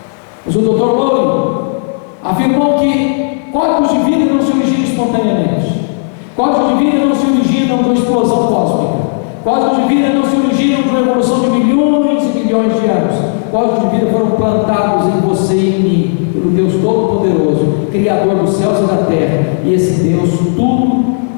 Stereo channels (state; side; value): silent; right; digital silence